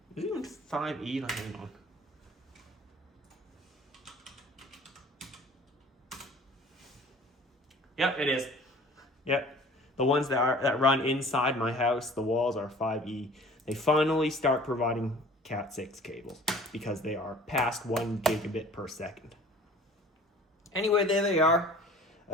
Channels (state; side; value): normal; both; correlation 0.48